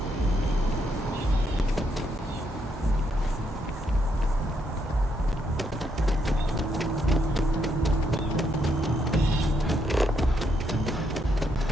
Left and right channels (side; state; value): both; normal; correlation 0.76